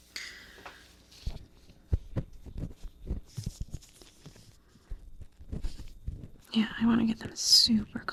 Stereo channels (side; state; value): both; identical; correlation 1.00